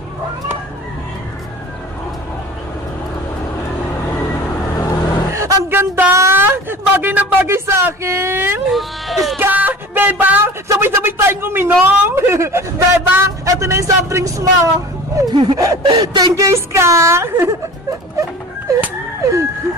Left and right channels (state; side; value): normal; both; correlation 0.39